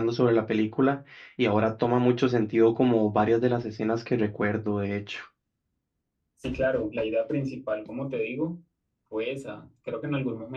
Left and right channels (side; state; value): both; identical; correlation 1.00